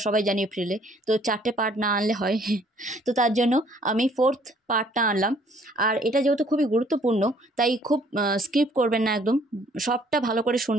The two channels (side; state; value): both; normal; correlation 0.61